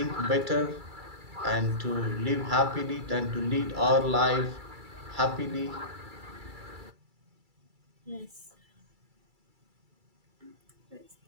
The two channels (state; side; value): late; left; 2.3 ms